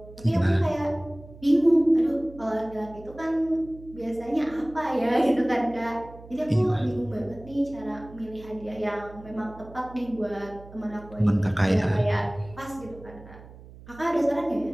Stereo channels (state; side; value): noise; right; hum, 19 dB below the sound